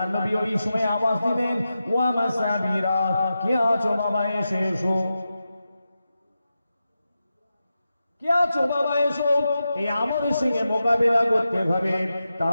নবী ওই সময় আওয়াজ দিলেন, ওয়া মাসাবিরা, কে আছো বাবা, এসে এসো। কে আছো বাবা, এসো, এই আমার সঙ্গে মোকাবেলা করতে হবে,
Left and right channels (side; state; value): both; inverted; correlation -0.91